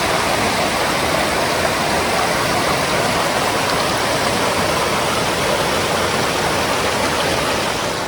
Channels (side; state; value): both; identical; correlation 1.00